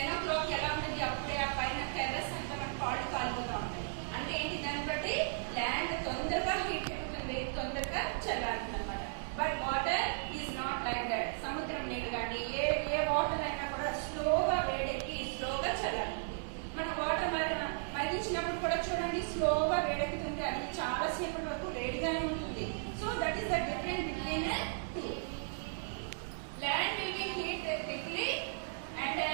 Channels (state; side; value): silent; left; digital silence